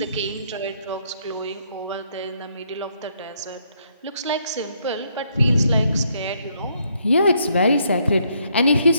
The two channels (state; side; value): inverted; both; correlation -0.72